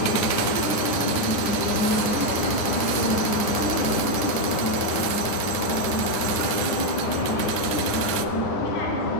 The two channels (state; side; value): late; right; 9.6 ms